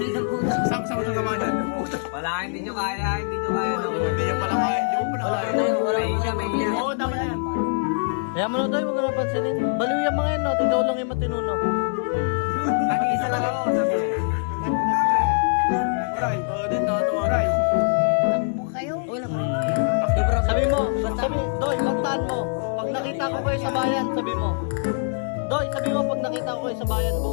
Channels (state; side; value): silent; right; digital silence